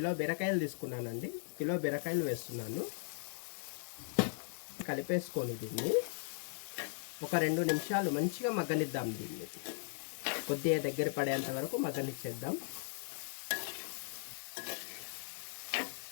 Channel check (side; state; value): right; silent; digital silence